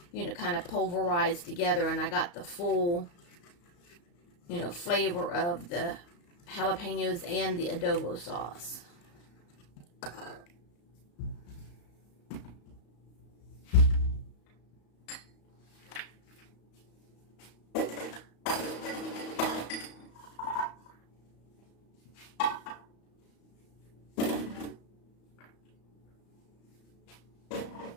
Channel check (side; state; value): right; late; 35 ms